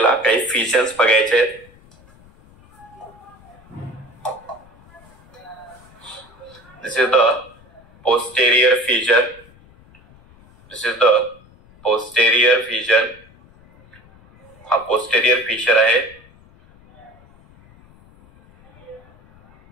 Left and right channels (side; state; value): left; noise; rumble, 27 dB below the sound